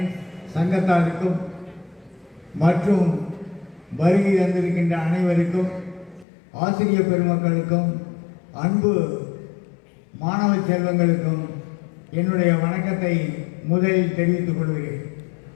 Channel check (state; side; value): drops out; right; at 6.2 s